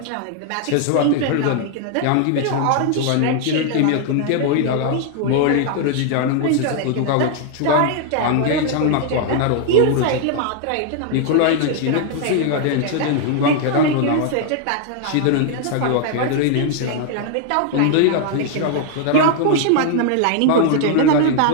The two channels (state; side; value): different; both; correlation 0.00